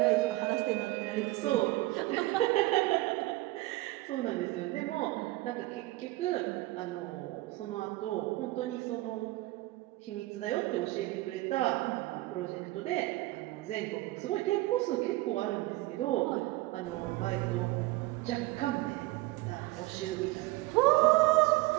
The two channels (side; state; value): left; quieter; 19.3 dB